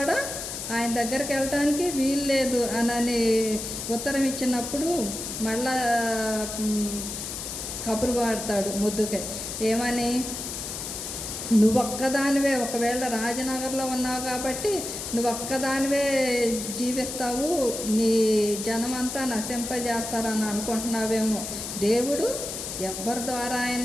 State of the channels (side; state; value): left; noise; hiss, 6 dB below the sound